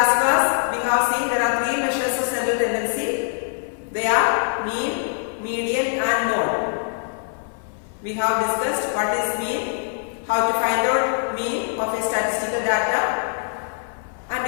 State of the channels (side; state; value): right; silent; 57 dB below the other